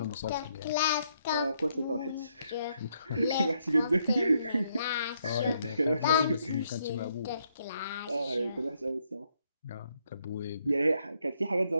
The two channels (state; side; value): inverted; both; correlation -0.74